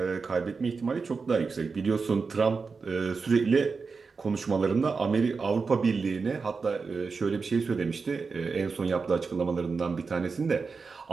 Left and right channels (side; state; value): left; quieter; 4.8 dB